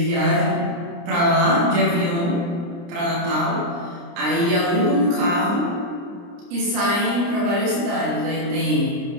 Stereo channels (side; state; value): left; late; 29 ms